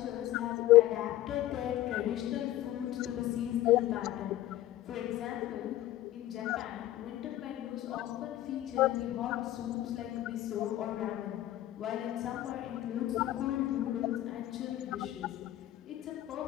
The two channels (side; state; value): right; quieter; 14.3 dB